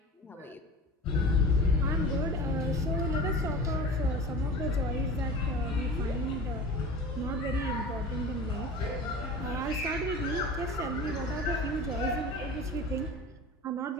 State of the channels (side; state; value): both; normal; correlation 0.36